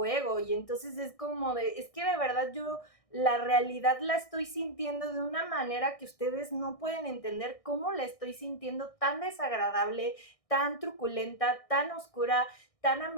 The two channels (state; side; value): late; right; 1.6 ms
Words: y entonces es como es que de verdad yo la realidad la estoy sintiendo de una manera que ustedes no pueden entender cómo la estoy sintiendo, tan desagradable, tan truculenta, tan oscura, tan